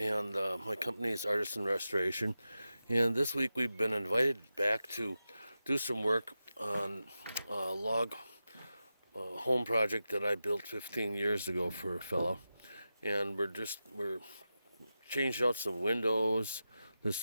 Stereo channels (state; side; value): inverted; both; correlation -0.91